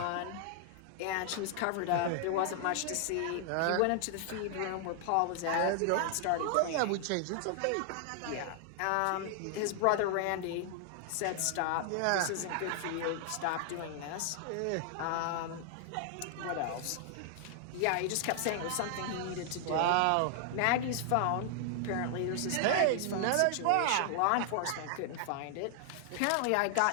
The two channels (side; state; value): both; different; correlation 0.00